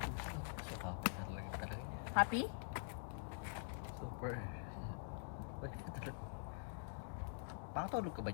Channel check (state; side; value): silent; right; digital silence